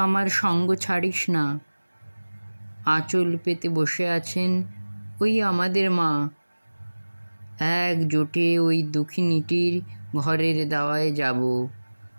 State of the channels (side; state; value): both; inverted; correlation -1.00